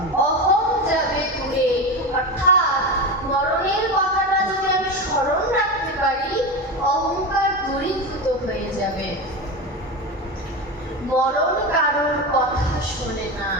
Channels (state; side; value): normal; both; correlation 0.20